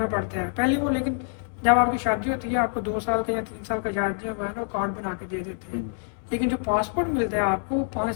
पड़ता है पहले वो, लेकिन जब आपकी शादी होती है आपको 2 साल का या 3 साल का जायज जो है ना वो कार्ड बना के दे देते हैं। लेकिन जो पासपोर्ट मिलता है आपको वो 5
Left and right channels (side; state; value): right; silent; 58 dB below the other